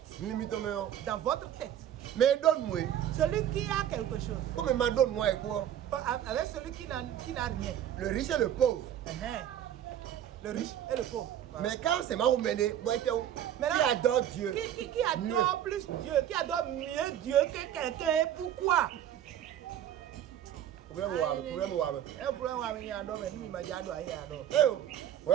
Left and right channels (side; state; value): left; quieter; 10.7 dB